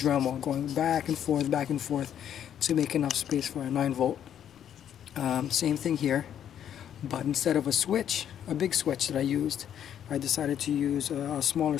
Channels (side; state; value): right; quieter; 9.7 dB